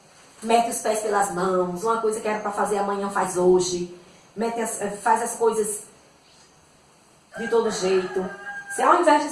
mete os pés pelas mãos, uma coisa que era para fazer amanhã faz hoje, faz as coisas de todo jeito. Se ao invés de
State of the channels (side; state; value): both; identical; correlation 1.00